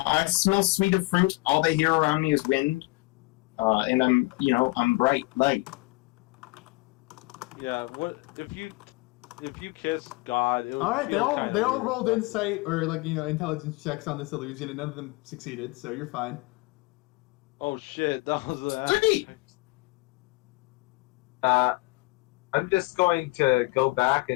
I smell sweet of fruit. All they hear around me is wind. And I'm bright light. Yeah, what if you kiss God? It would All right, feel they all weird. rolled insight or, like, you know, intelligence checks on this illusion, and none of them succeeded, so you're fine. Oh shit, that was a. Sweet! I'm just going to go back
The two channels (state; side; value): quieter; right; 23.8 dB